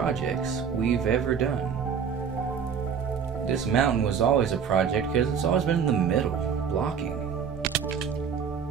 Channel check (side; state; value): left; quieter; 7.0 dB